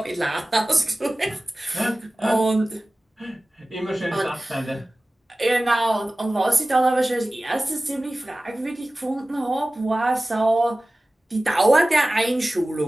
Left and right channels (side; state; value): both; normal; correlation 0.97